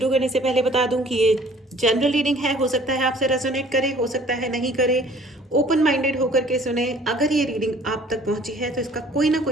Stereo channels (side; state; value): both; normal; correlation 0.53